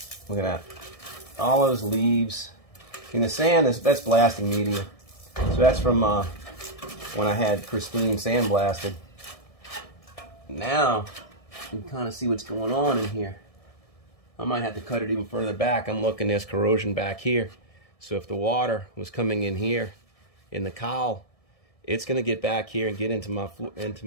Look at that. All those leaves. And the sand, that's blasting media. So that's from when I had Christine sandblasted. Now, you can kind of see what's going on in here. I might have to cut it even further back. I'm looking, there's corrosion back here. So if the water was coming in here, in the cowl, it's going to get back here and get into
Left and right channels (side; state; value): right; late; 1.7 ms